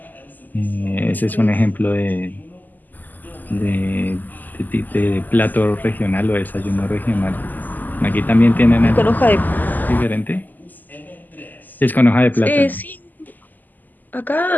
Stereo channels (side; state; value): right; late; 0.085 ms